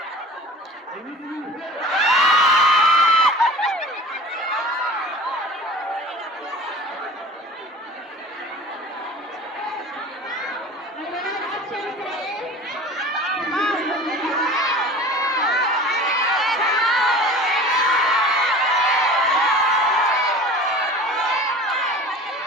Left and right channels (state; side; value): normal; both; correlation 0.40